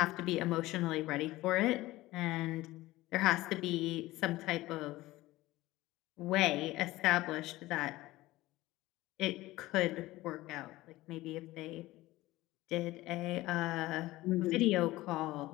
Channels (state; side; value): quieter; right; 17.9 dB